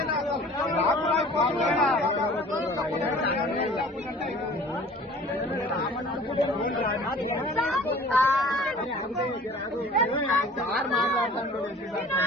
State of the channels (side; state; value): both; normal; correlation 0.47